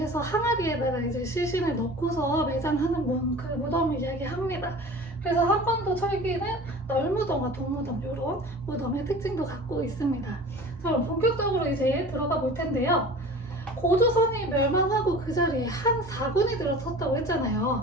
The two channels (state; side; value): normal; both; correlation 0.40